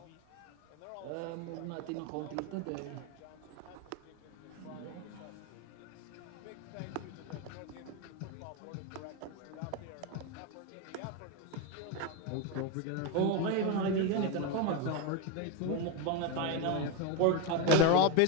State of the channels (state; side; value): different; both; correlation 0.03